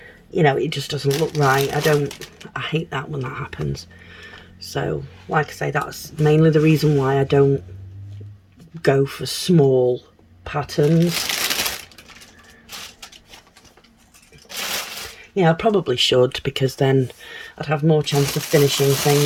you know, it just doesn't look right. I hate that when that happens. So like I say, that's mainly the reason why I don't go for small patterns. Yeah, I probably should, because then I'd have more chance of finishing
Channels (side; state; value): both; identical; correlation 1.00